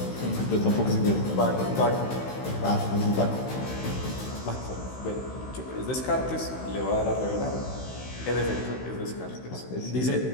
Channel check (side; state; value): right; late; 16 ms